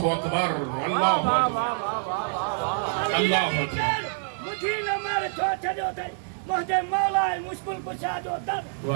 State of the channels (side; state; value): left; silent; digital silence